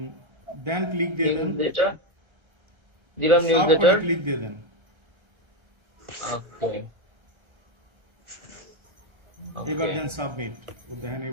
দেন ক্লিক দিয়ে দেন, নিউজলেটার দিলাম, সব নিউজলেটার। করে ক্লিক দিয়ে দেন। ওকে এবার দেন সাবমিট। ও দেখেন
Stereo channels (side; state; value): left; late; 1.3 ms